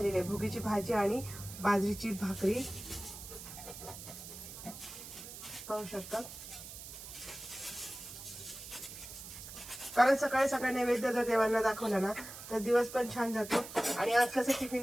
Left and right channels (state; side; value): noise; right; hiss, 12 dB below the sound